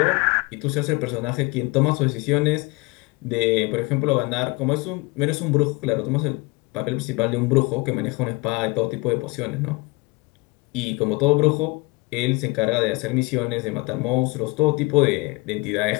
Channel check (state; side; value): quieter; right; 25.4 dB